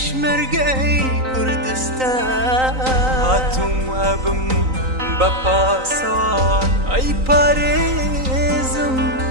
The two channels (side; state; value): left; late; 3.9 ms